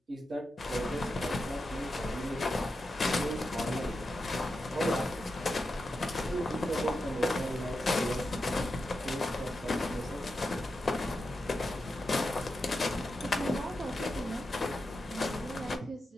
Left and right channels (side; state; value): both; normal; correlation 0.89